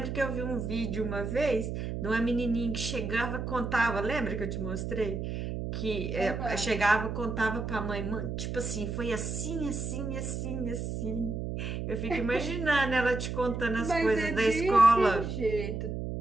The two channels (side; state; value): right; noise; hum, 4 dB below the sound